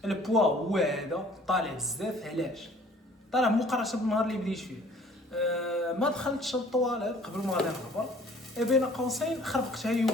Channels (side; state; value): both; normal; correlation 0.54